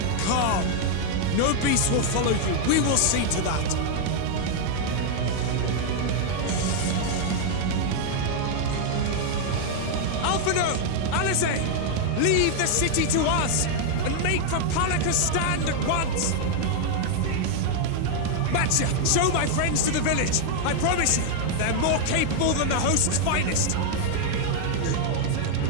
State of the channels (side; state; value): both; different; correlation 0.00